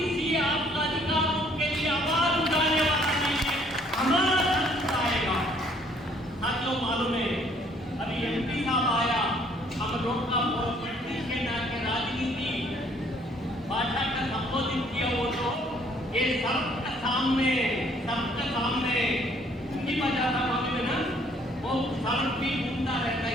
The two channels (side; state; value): both; normal; correlation 0.62